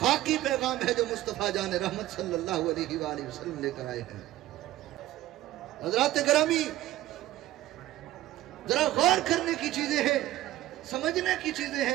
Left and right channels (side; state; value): left; quieter; 15.1 dB